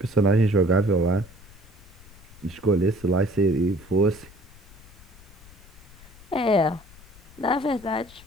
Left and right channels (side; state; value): left; noise; rumble, 21 dB below the sound